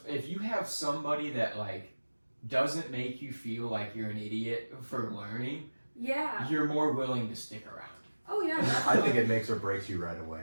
if you have somebody that like doesn't make you feel like you're an idiot for learning, Yeah. you're more willing to stick around. Oh yeah. I think definitely. it makes or breaks you right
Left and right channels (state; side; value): inverted; both; correlation -1.00